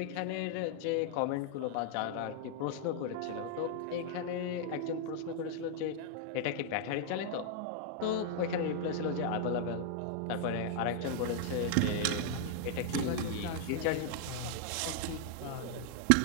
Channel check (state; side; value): different; both; correlation 0.00